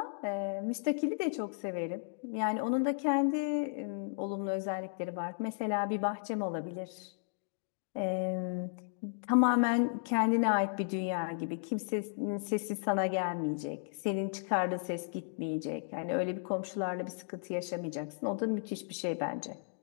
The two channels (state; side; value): silent; right; digital silence